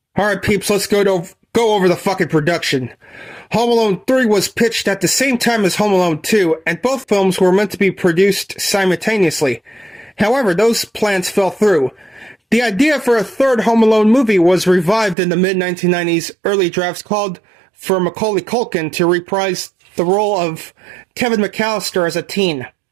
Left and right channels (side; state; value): left; drops out; at 15.2 s